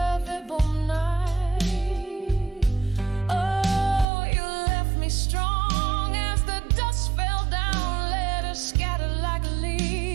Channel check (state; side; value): drops out; left; at 4.0 s